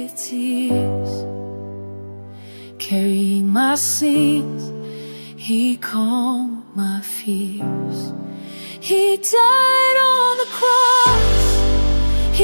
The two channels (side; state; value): both; inverted; correlation -1.00